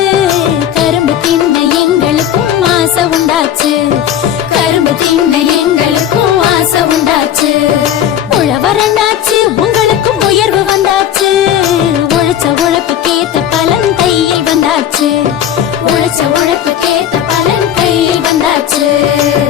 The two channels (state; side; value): quieter; right; 10.2 dB